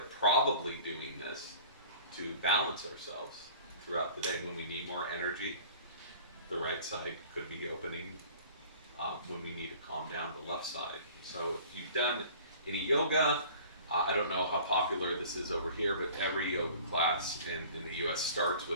doing this to balance ourselves throughout the day. When we need more energy, the right side could be opening. When we need to calm down, the left side. So if you've done any yoga, I don't know how popular this is over here, but every yoga class in the US starts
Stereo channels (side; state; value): both; inverted; correlation -0.46